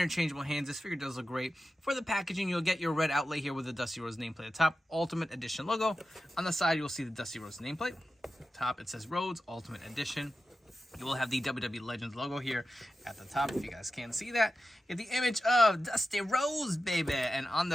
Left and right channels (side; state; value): both; normal; correlation 0.92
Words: hands. This figure does look great. For the packaging, you'll get your red outlay here with the Dusty Rhodes nameplate at the top, Ultimate Edition logo. On the side, you'll see the Dusty Rhodes nameplate. Top, it says Rhodes Ultimate Edition. You will have the WWE Legends logo here at the top, if you guys can't see that. You have the image of Dusty Rhodes, baby. And on